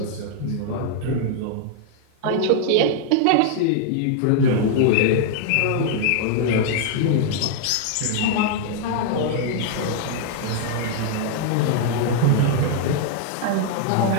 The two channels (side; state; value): both; different; correlation -0.01